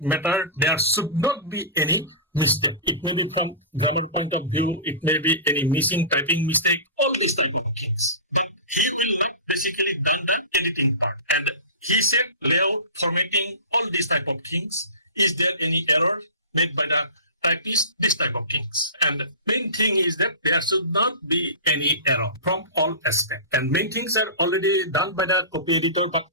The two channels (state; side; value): inverted; both; correlation -0.31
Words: matter there should not be any mistake. It may be from grammar point of view, it may be any missing typing mistake, all these type of things. But he will not basically done the editing part. And he said layout, formatting, all these type of things. Is there any error made by the typist? This type of things. And main thing is that there should not be any error from all aspects. And main things are already done by the copy editor, but